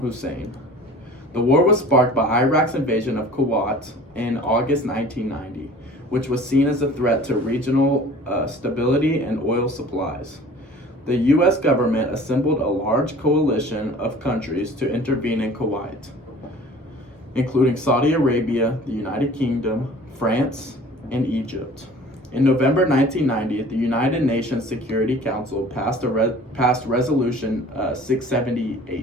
The war was sparked by Iraq's invasion of Kuwait in August 1990, which was seen as a threat to regional stability and oil supplies. The U.S. government assembled a large coalition of countries to intervene in Kuwait, including Saudi Arabia, the United Kingdom, France, and Egypt. In November 1990, the United Nations Security Council passed Resolution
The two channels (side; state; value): both; normal; correlation 0.46